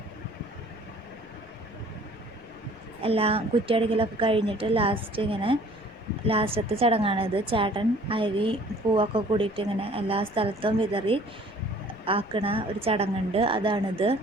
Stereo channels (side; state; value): left; noise; rumble, 25 dB below the sound